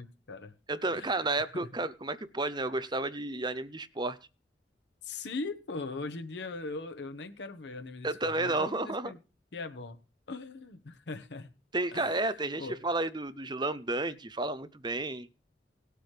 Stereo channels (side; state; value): both; normal; correlation 0.22